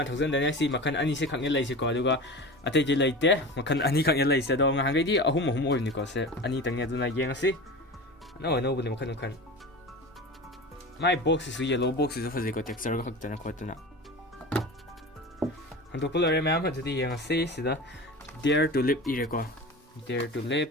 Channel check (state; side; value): normal; both; correlation 0.31